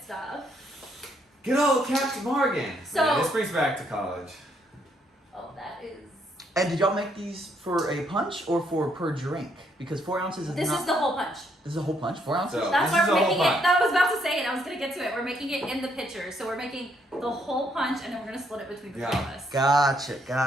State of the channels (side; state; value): both; normal; correlation 0.72